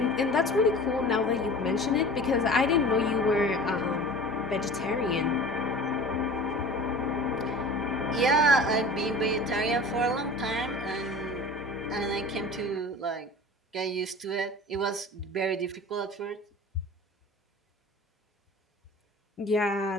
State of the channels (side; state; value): both; normal; correlation 0.39